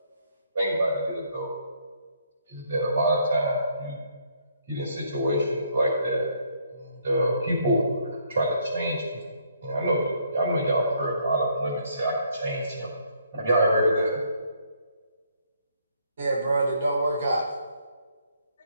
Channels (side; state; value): both; inverted; correlation -0.69